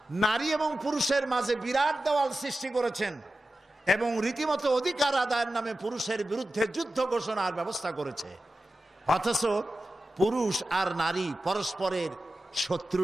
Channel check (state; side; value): normal; both; correlation 0.93